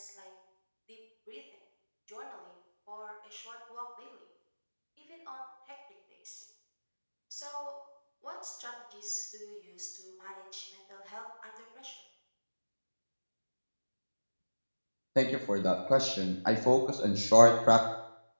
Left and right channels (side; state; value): both; inverted; correlation -1.00